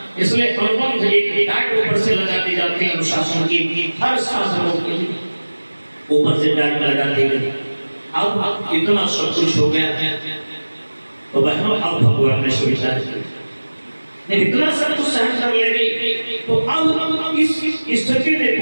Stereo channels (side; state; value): both; inverted; correlation -1.00